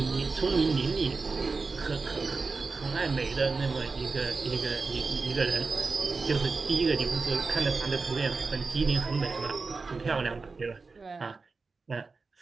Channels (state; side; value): quieter; left; 4.2 dB